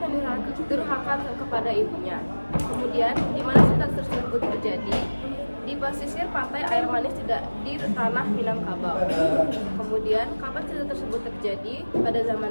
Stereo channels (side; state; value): both; inverted; correlation -1.00